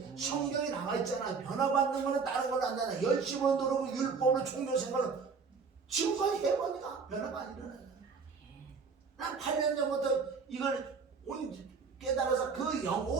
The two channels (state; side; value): quieter; left; 5.2 dB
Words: 성경에 나와 있잖아. 변화받는 거는 다른 걸로 안 되나. 열심을 누르고 율법으로 종교 생활을 지금까지 해보니까 변화가 안 일어나잖아. 난 8년 전부터 이걸 깨달아서